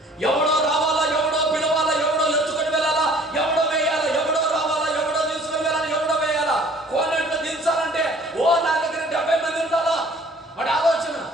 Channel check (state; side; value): normal; both; correlation 0.53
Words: ఎవడో రావాలా, ఎవడో పిలవాలా, ఎవడో ఎత్తుకొని వెళ్ళాలా, ఎవడో వేయాలా, ఎవడో రావాలా, ఎవడో తీసుకొని వెళ్ళాలా, ఎవడో వేయాలా. కోనేట్లో దించాలంటే నా దగ్గర 70 మంది ఉండాలా. వాడి ఆలోచన.